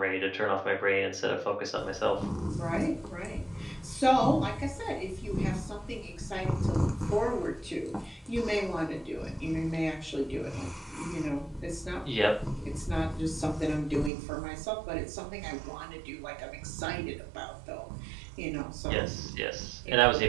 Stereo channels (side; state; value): left; drops out; at 14.1 s